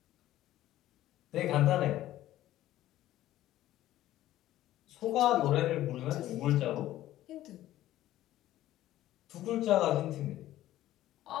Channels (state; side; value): quieter; right; 14.2 dB